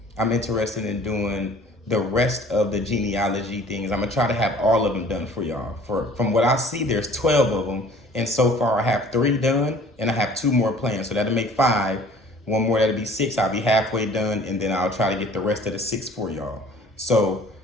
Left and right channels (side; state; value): both; normal; correlation 0.51